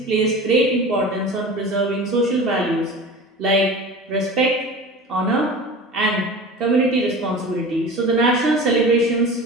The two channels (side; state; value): both; normal; correlation 0.35